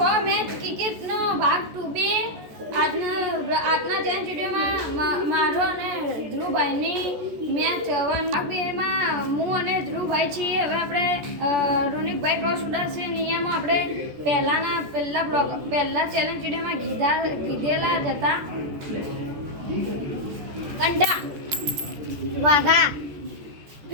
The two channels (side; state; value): left; late; 14 ms